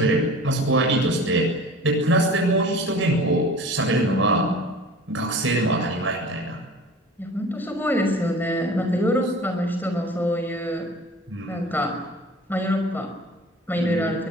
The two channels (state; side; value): normal; both; correlation 0.42